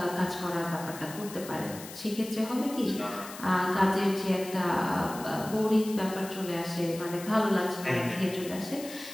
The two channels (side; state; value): left; noise; hiss, 14 dB below the sound